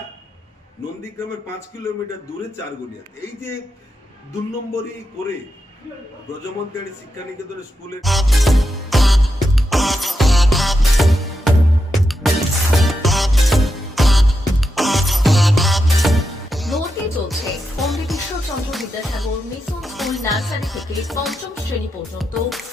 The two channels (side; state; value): both; normal; correlation 0.86